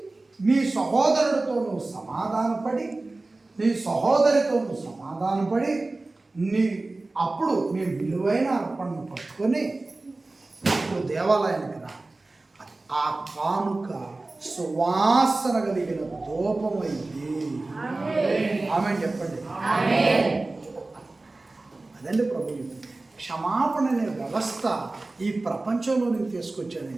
నీ సహోదరుడితో నువ్వు సమాధానపడి, నీ సహోదరితో నువ్వు సమాధానపడి, అప్పుడు నీ విలువైన అర్పణను పట్టుకొని అప్పుడు దేవాలయానికి రా. ఆ కానుక సువాసన కలిగిన ధూపమైంది. ఆమె చెప్పండి. అదండి ప్రభు. క్షమాపణ అనే వ్యవస్థ ఈ ప్రపంచంలోనికి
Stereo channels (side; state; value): left; quieter; 3.1 dB